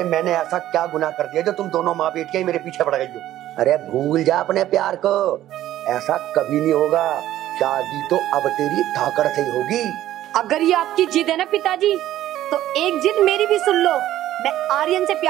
मैंने ऐसा क्या गुनाह कर दिया जो तुम दोनों माँ बेटियां मेरे पीछे पड़ गई हो? अरे भूल जा अपने प्यार को, ऐसा कभी नहीं होगा। शादी तो अब तेरी धाकड़ से ही होगी। अगर ये आपकी जिद है ना पिताजी, तो एक जिद मेरी भी सुन लो। मैं आर्यन से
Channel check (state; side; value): quieter; left; 13.4 dB